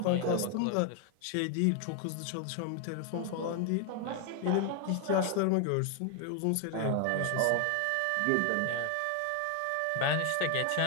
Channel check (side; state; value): both; different; correlation 0.00